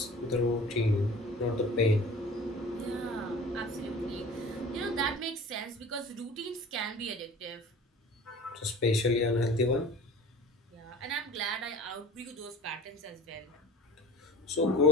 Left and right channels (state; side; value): normal; both; correlation 0.40